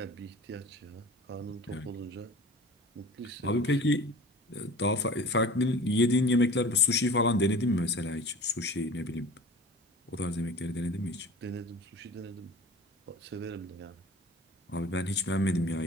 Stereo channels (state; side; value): normal; both; correlation 0.40